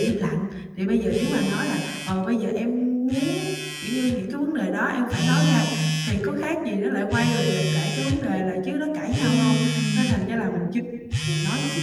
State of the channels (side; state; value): both; identical; correlation 1.00